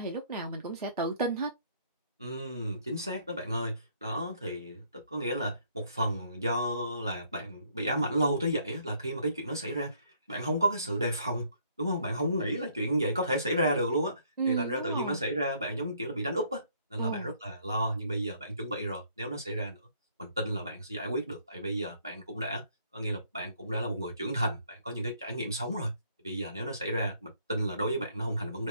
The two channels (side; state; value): both; inverted; correlation -0.65